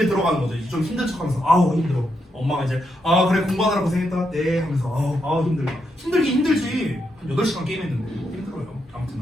들어가는 거죠. 좀 힘든 척하면서 아우 힘들어. 엄마가 이제 그래 공부하느라 고생했다. 네 하면서 아우 힘들다. 힘들긴 힘들지. 한 8시간 게임했는데 힘들어요. 아무튼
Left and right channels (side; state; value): both; normal; correlation 0.82